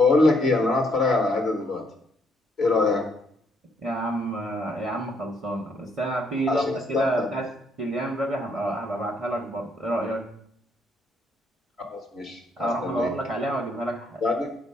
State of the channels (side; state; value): both; normal; correlation 0.71